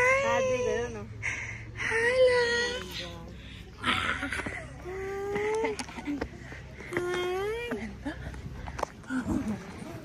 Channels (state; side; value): identical; both; correlation 1.00